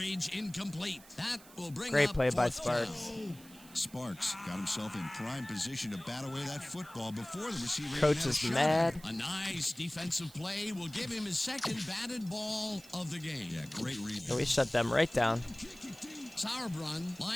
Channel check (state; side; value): noise; right; hiss, 21 dB below the sound